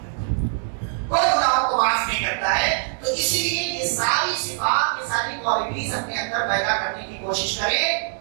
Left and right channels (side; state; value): left; silent; digital silence